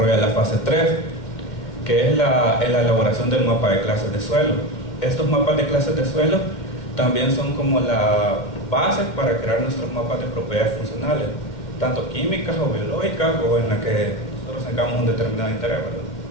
la fase 3, que es la elaboración del mapa de clases de suelo. Estos mapas de clases de suelo también son como la base para crear nuestros mapas de propiedades funcionales, tanto químicas o biológicas, o en la que nosotros tengamos un determinado interés, ¿verdad?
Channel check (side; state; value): right; late; 2.2 ms